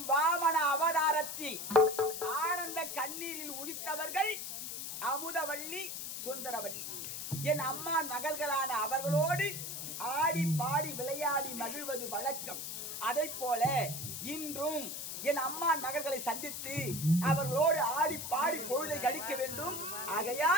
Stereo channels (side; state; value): left; noise; hiss, 6 dB below the sound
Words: வாமன அவதாரத்தில் ஆனந்த கண்ணீரில் உதித்தவர்கள் அமுதவள்ளி சுந்தரவள்ளி என் அம்மா மகள்களான அவர்களோடு ஆடி பாடி விளையாடி மகிழ்வது வழக்கம். அதை போல இன்றும் என் அம்மா மகள்களை சந்தித்து அவர்களோடு ஆடி பாடி பொழுதை கழிக்க வேண்டும்.